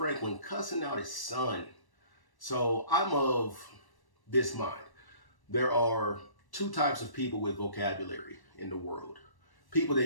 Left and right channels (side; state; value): right; late; 1.1 ms